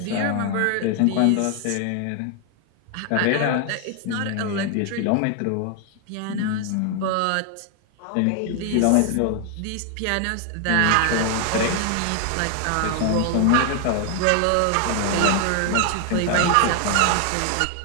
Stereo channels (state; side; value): different; both; correlation 0.00